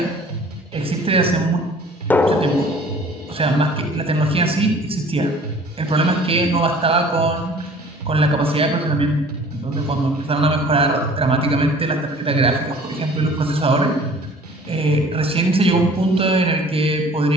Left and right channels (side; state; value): both; normal; correlation 0.49